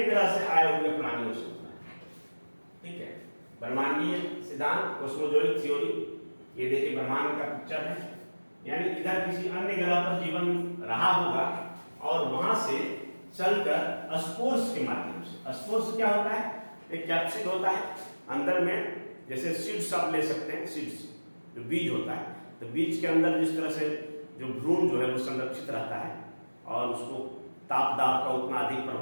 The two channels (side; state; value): both; inverted; correlation -1.00